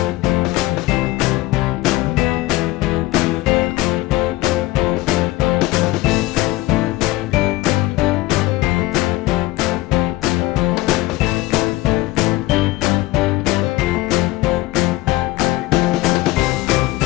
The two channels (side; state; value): right; quieter; 18.7 dB